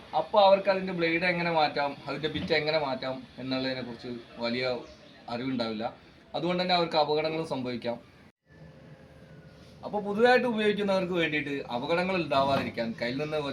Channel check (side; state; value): both; identical; correlation 1.00